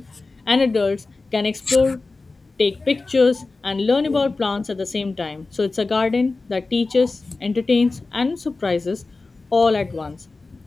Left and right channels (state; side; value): quieter; right; 3.6 dB